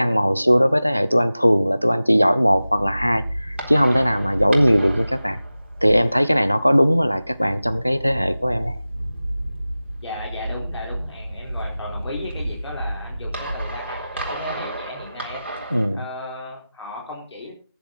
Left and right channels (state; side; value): inverted; both; correlation -0.96